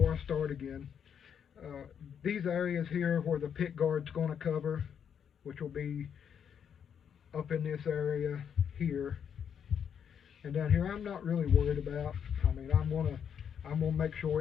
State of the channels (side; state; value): right; quieter; 8.0 dB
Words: I start again, these areas here where the pick guard's going to cover, which will be up in this area here and down here, I'm not really worried about. I mean, I'm gonna make